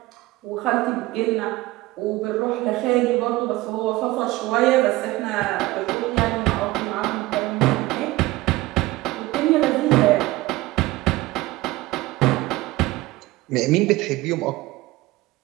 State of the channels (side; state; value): left; quieter; 19.1 dB